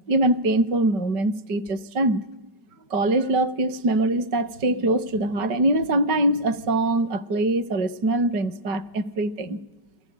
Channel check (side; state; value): left; late; 5.2 ms